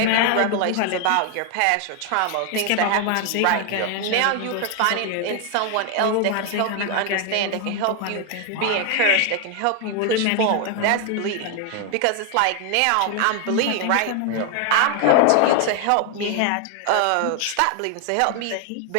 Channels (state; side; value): different; both; correlation 0.01